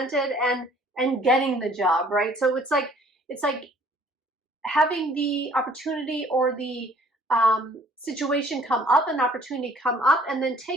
and getting the job, right? So it's like having the opportunity or the situation come up, an opportunity come up, and then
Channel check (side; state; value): both; normal; correlation 0.57